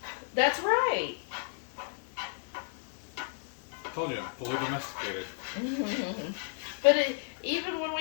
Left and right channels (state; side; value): silent; right; digital silence